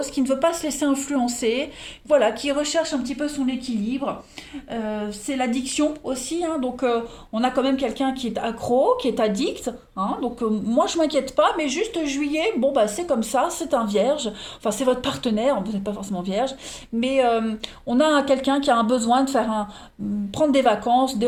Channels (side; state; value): both; identical; correlation 1.00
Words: qui ne veut pas se laisser influencer, voilà, qui recherche un petit peu son équilibre. C'est l'addiction aussi, hein, donc on a quand même quelqu'un qui est accro, qui est addict. Hein, donc moi je m'inquiète pas, mais juste juillet, bon bah c'est comme ça, c'est un vierge, enfin c'est votre partenaire, vous n'êtes pas forcément vierge, mais on a quelqu'un qui a un besoin de prendre des vacances,